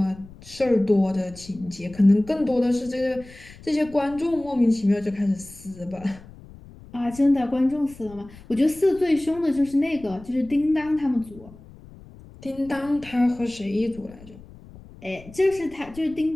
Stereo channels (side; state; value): left; noise; rumble, 20 dB below the sound